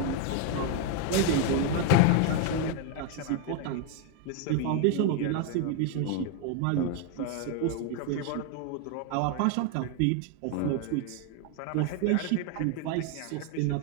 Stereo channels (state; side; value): different; both; correlation 0.01